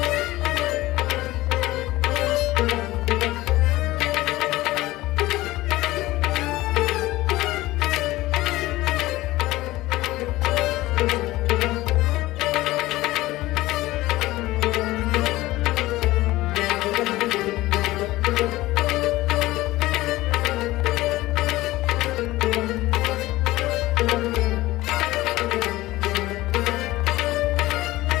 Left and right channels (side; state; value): right; quieter; 17.9 dB